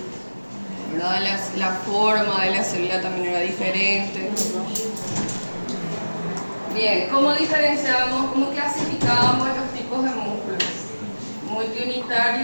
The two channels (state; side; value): inverted; both; correlation -1.00